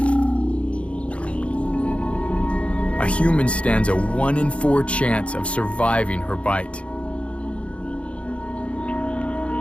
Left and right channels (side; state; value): right; late; 0.061 ms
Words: A human stands a 1 in 4 chance of surviving her bite.